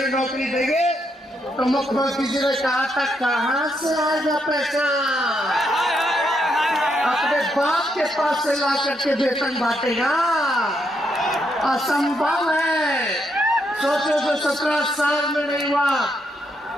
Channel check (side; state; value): both; normal; correlation 0.78